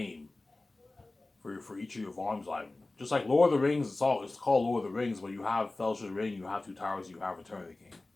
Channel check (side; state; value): right; quieter; 3.0 dB